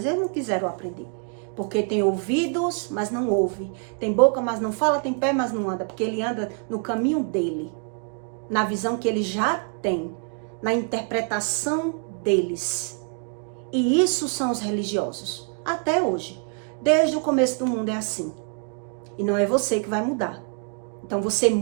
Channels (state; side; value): quieter; left; 37.4 dB